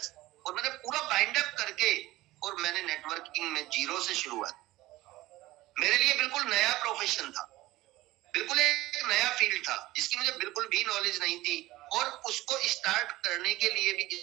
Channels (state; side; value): quieter; left; 17.8 dB